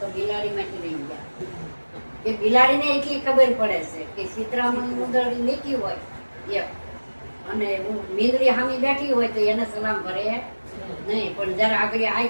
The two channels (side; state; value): both; inverted; correlation -1.00